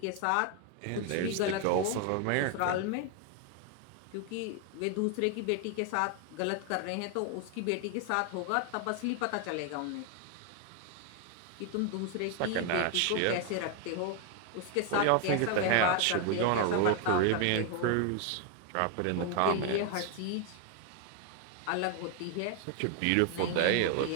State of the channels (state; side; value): different; both; correlation 0.01